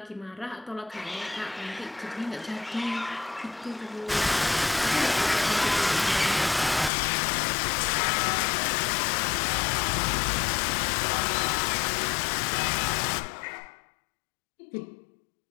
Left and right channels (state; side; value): drops out; right; at 6.9 s